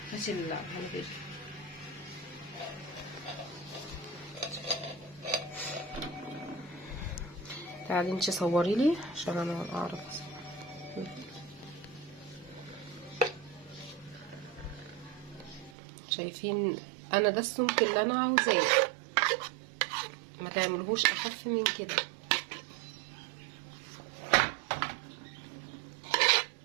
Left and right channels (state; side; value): drops out; left; at 15.8 s